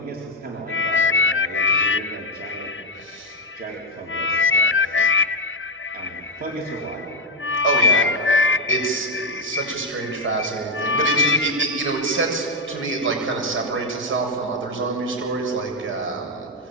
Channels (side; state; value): both; normal; correlation 0.05